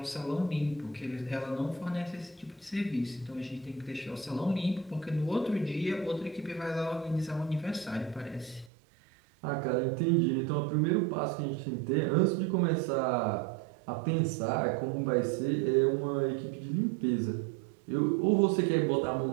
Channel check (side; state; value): left; drops out; at 8.7 s